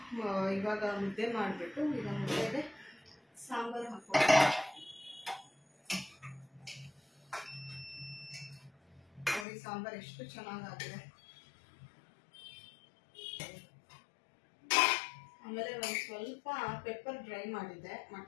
ಇವಾಗ ಮುದ್ದೆ ಮಾಡಿಬಿಟ್ಟು ಈಗ ಮುದ್ದೆಗೆ ಸಾಂಬಾರು ಹಾಕೋಣ. ನೋಡಿ ಸಾಂಬಾರು ಎಷ್ಟು ಚೆನ್ನಾಗಾಗಿದೆ. ಆಮೇಲೆ ಒಂದು ಸ್ವಲ್ಪ ಪೆಪ್ಪರ್ ಡ್ರೈ ಮಾಡಿದ್ದೆ,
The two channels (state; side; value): drops out; right; at 9.5 s